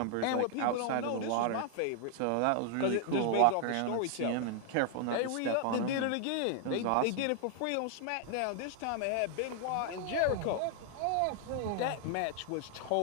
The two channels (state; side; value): different; both; correlation 0.00